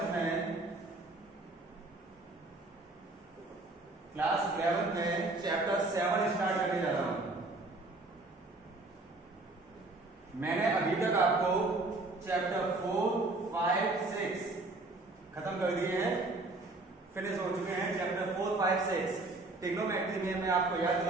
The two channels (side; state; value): left; quieter; 3.1 dB